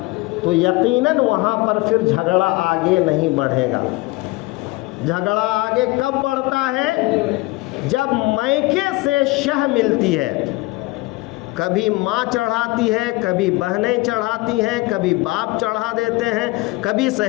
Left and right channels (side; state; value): right; quieter; 22.0 dB